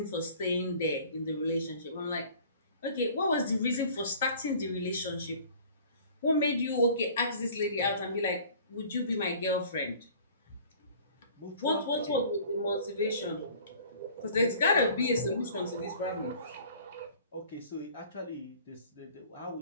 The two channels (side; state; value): both; inverted; correlation -0.49